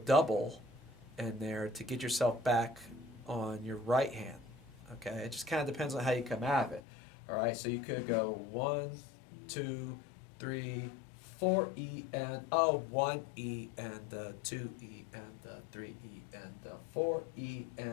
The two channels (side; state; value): right; drops out; at 6.8 s